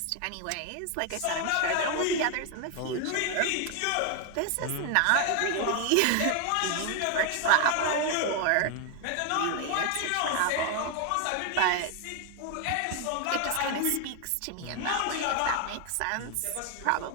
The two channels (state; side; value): different; both; correlation 0.01